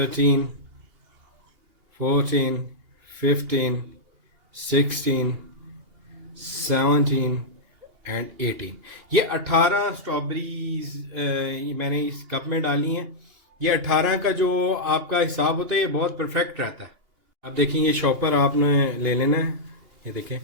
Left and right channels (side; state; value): left; late; 2.8 ms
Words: 14 15 16 17 एंड 18। ये 18 स्ट्रॉबेरीज मैंने इस कप में डाली हैं। ये 18 का जो आपका हिसाब होता है ये बहुत परफेक्ट रहता है। अब देखिए, ये शॉपर आपने ले लेना है। ये देखें,